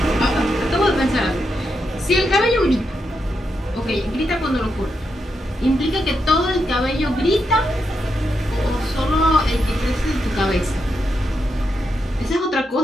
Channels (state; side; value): normal; both; correlation 0.84